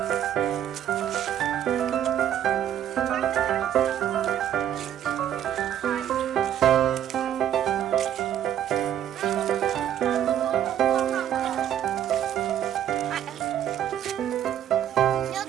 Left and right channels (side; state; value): left; quieter; 10.6 dB